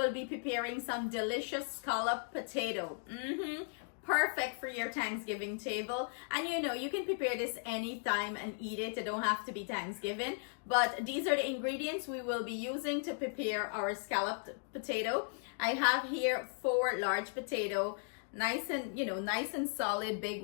be preparing some delicious scalloped potato. Perfect for your Thanksgiving table. And you can prepare this anytime and eat it. It don't have to be Thanksgiving. But these are the ingredients we will be using to prepare our scalloped potato. I have here 4 large potato, nice and solid, big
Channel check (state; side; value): silent; right; 53 dB below the other